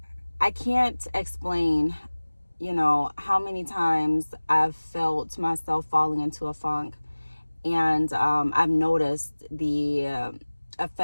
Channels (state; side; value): inverted; both; correlation -1.00